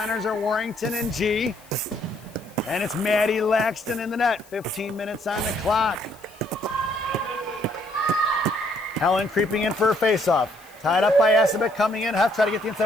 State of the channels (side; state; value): left; noise; hiss, 25 dB below the sound